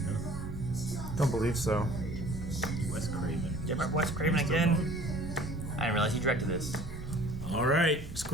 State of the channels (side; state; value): both; normal; correlation 0.49